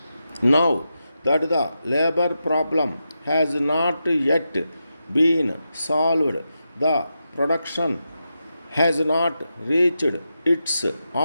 Now that the labor problem has not yet been solved, the production has not reached its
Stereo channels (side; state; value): both; inverted; correlation -0.88